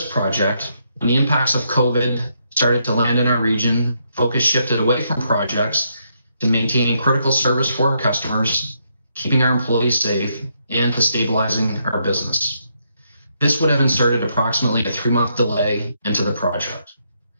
project. When the impacts of COVID started to land in our region, focus shifted away from projects to maintaining critical service for our customers, keeping our employees safe, and to stabilizing our business. This would have inserted approximately a 3-month delay into the project.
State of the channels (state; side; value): inverted; both; correlation -0.77